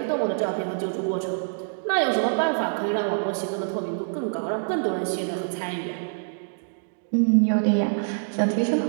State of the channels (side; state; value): left; silent; digital silence